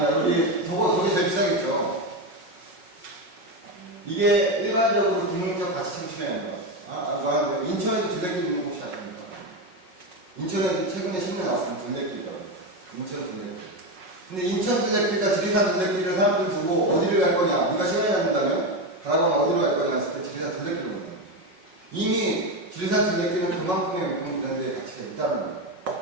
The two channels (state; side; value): late; left; 5.4 ms